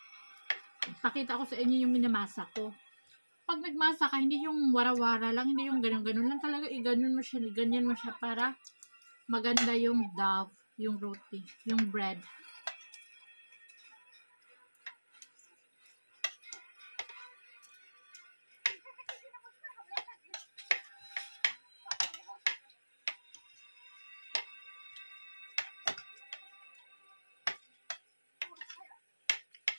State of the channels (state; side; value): inverted; both; correlation -1.00